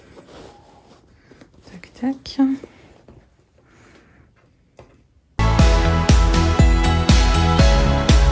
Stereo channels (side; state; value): both; identical; correlation 1.00